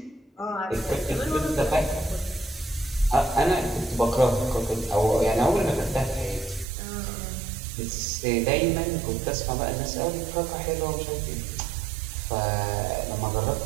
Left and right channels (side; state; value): left; drops out; at 6.7 s